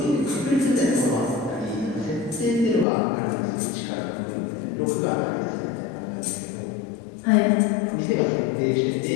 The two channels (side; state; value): right; drops out; at 2.9 s